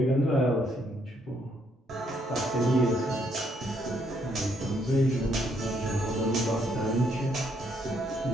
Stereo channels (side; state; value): both; normal; correlation 0.72